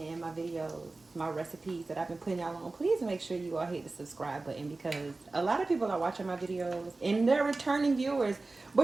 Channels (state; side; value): quieter; left; 3.4 dB